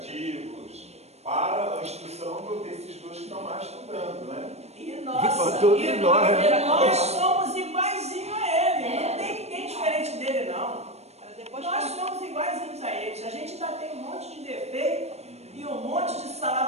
para a instrução desses dois que estão lá estudando, né? E Para nossa, todos e nós, nós somos iguaizinhos a ele. Não tem ninguém diferente dele, não. Para depois Nós somos iguaizinhos a eles. A gente ainda tem um monte de defeito e um monte de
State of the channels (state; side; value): late; left; 0.31 ms